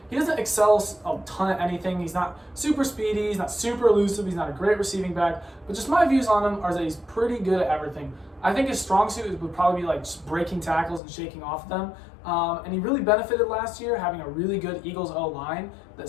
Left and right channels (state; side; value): drops out; right; at 11.0 s